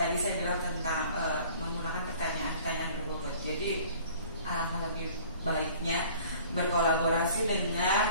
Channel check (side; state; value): both; inverted; correlation -0.50